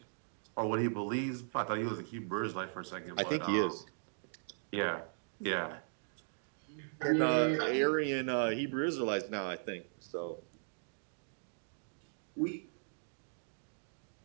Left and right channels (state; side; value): silent; left; digital silence